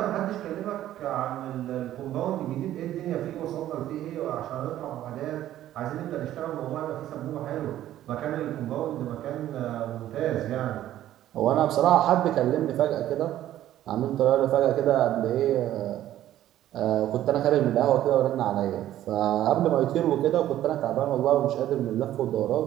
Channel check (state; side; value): quieter; left; 12.9 dB